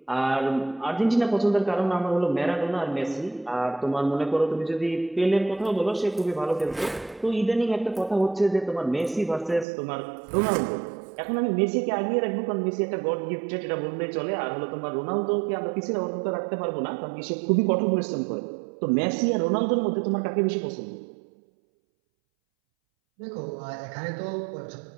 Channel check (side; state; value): left; drops out; at 9.7 s